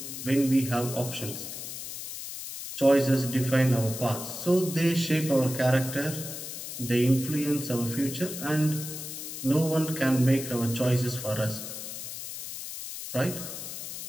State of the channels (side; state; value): left; noise; hiss, 8 dB below the sound